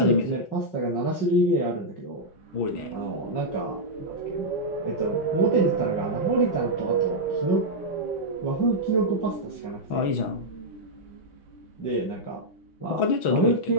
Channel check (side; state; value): right; late; 6.1 ms